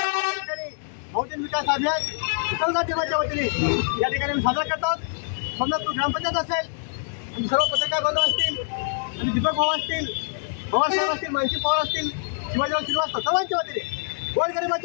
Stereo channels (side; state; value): right; silent; digital silence